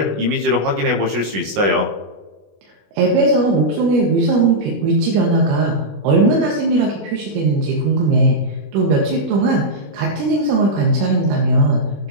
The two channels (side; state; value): left; late; 20 ms